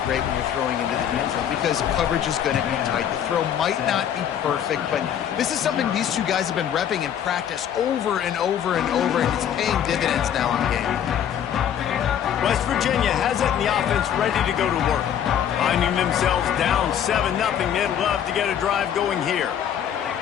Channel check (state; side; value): quieter; right; 9.4 dB